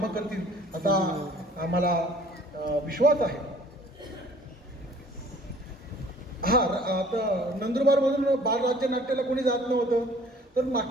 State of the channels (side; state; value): both; normal; correlation 0.53